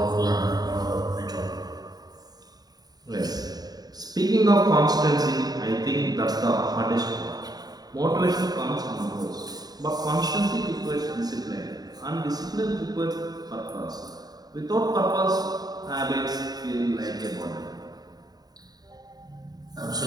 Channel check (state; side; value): late; left; 0.19 ms